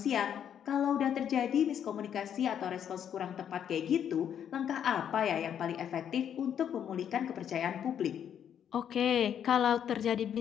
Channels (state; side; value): quieter; right; 9.0 dB